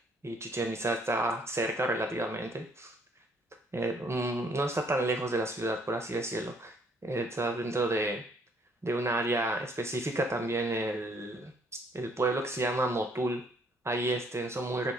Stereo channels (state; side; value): normal; both; correlation 0.64